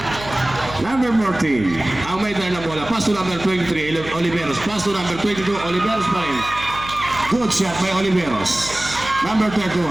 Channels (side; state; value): right; noise; hum, 14 dB below the sound